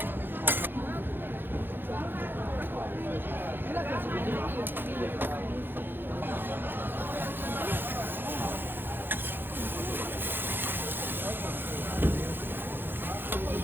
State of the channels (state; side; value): late; left; 0.099 ms